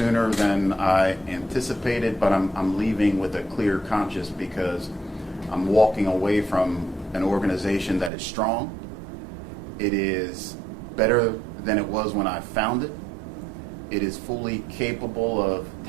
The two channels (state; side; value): drops out; left; at 8.1 s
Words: than I anticipated, but I'm leaving with a clear conscience because I'm walking away from an organization that is strong. It is better than it was when I found it. It is fully capable of